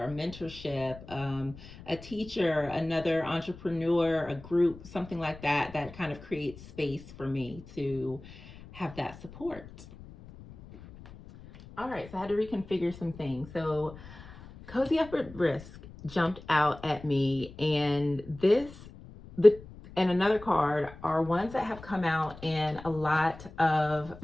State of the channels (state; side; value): noise; left; rumble, 18 dB below the sound